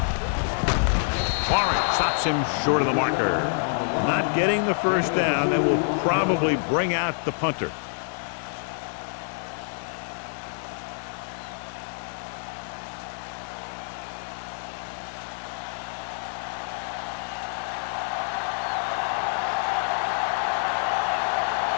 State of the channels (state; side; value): silent; right; digital silence